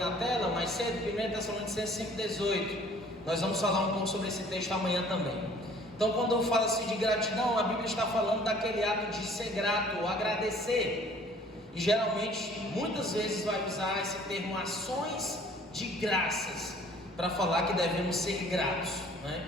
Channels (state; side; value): normal; both; correlation 0.54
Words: tela mais cedo, 1 Tessalonicenses 5,18. Nós vamos falar um pouco sobre esse texto amanhã também. Então, quando eu falo assim de gratidão, a Bíblia está falando daquele ato de ser grato, ou agradecer. E geralmente, muitas vezes vai usar esse termo ações de graças para falar que devemos ser gratos,